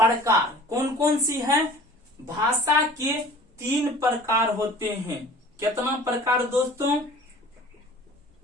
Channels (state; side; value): normal; both; correlation 0.45